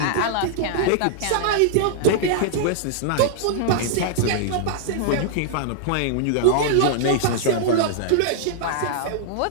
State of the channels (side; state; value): both; different; correlation -0.01